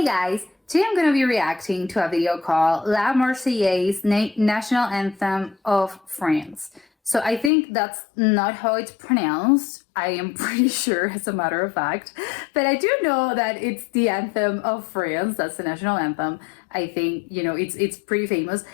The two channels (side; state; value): right; drops out; at 7.5 s